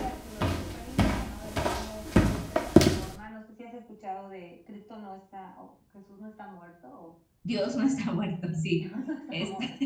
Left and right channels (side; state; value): both; identical; correlation 1.00